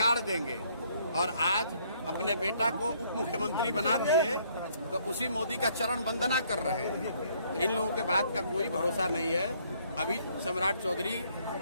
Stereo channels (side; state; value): both; inverted; correlation -0.66